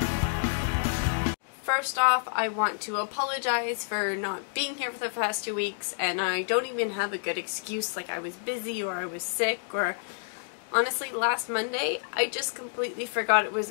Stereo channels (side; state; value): right; silent; digital silence